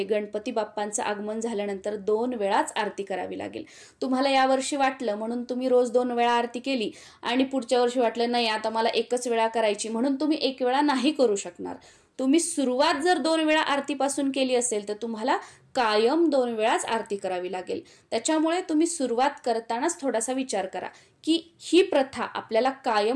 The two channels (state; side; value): identical; both; correlation 1.00